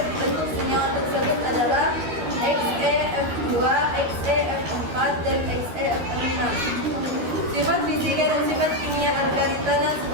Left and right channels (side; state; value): left; late; 12 ms